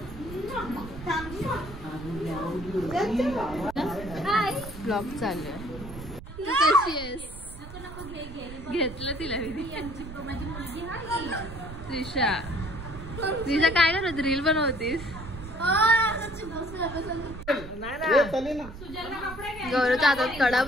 ब्लॉग चालू आहे. तू कशी आहेस? घेतलं तिला मी. त्रिशा त्रिशा काय करत रील बनवतीस? गौरवच्या हातात कडा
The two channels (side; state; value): right; noise; rumble, 13 dB below the sound